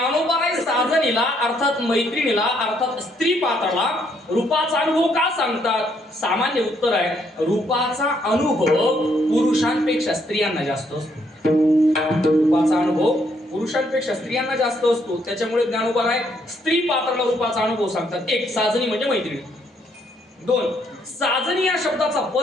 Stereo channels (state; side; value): normal; both; correlation 0.71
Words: साजनीला अर्थात मैत्रिणीला अर्थात स्त्री पात्राला रूपाचा अनुभव का सांगतात? सामान्य उत्तर आहे, रूपाचा अनुभव पुरुषांपेक्षा स्त्रियांना जास्त असतो. रूपाचा अनुभव पुरुषांपेक्षा स्त्रियांना जास्त असतो. त्याच्यामुळे ज्ञानोबराय स्त्री पात्राला रूपाचा अनुभव सांगतात. एक, साजनी म्हणजे मैत्रिणी. दोन, साजनी या शब्दाचा